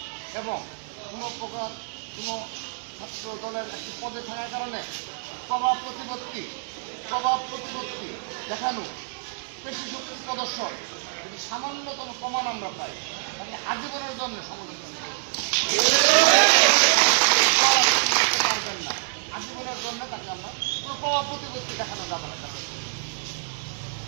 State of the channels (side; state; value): left; silent; digital silence